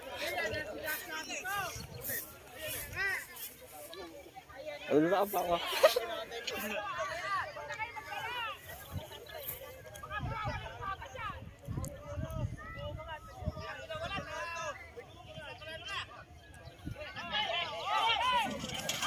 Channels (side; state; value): both; identical; correlation 1.00